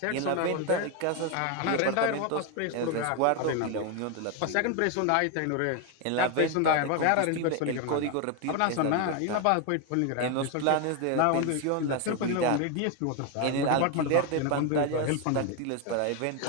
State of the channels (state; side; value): different; both; correlation 0.01